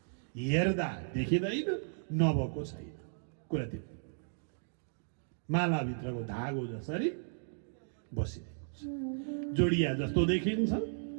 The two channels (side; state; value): left; silent; digital silence